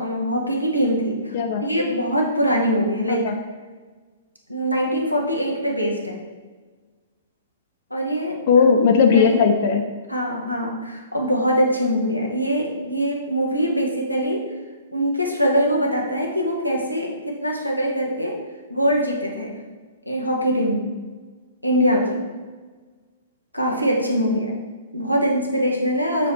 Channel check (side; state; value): both; inverted; correlation -0.55